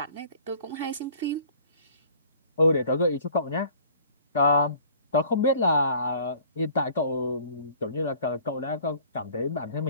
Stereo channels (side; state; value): both; inverted; correlation -0.51